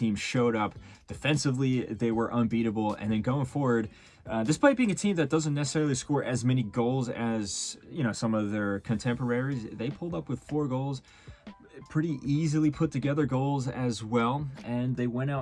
showed up. Defensively, they were unbeatable. And then going forward, despite being a team that doesn't necessarily score as many goals as, some of their contemporaries, they pulled up with 4 goals. Pretty easily put together goals as well, and they went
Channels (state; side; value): identical; both; correlation 1.00